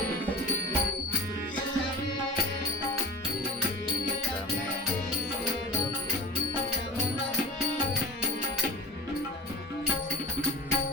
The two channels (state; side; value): normal; both; correlation 0.33